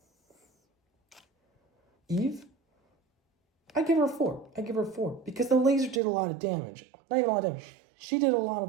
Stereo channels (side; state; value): left; drops out; at 6.0 s